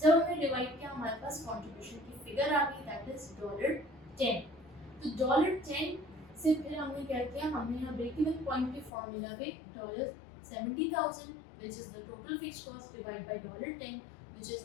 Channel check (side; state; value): right; drops out; at 8.9 s